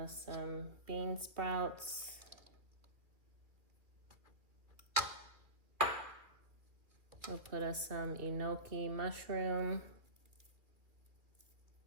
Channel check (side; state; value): left; late; 2.4 ms